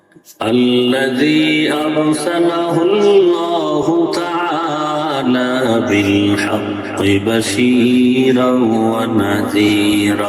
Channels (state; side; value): identical; both; correlation 1.00